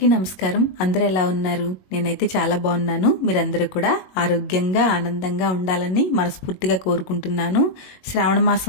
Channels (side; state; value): right; late; 21 ms